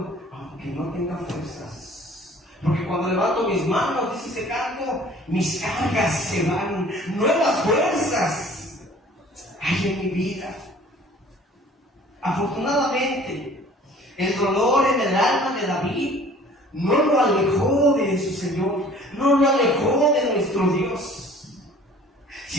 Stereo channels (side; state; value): both; normal; correlation 0.50